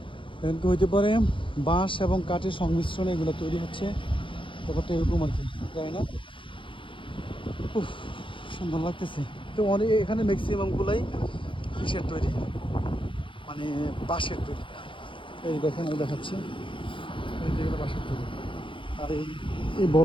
এখন কি হইতে পারে বাঁশ এবং কাঠের সংমিশ্রণে এগুলো তৈরি হচ্ছে, ব্যাপারটা এরকম আর কি, জানি না। উফ, সুন্দর লাগতেছে তো অনেক। এখানে ম্যাক্সিমামগুলাই কিসের তৈরি, মানে বাঁশের তৈরি। এই দেখেন, আমি দেখাচ্ছি, এই যেগুলো বাঁশের তৈরি, আর এই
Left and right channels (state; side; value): late; right; 0.25 ms